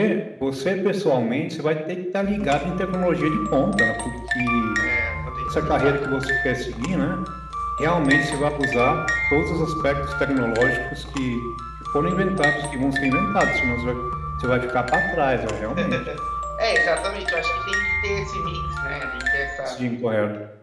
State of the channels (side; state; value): both; identical; correlation 1.00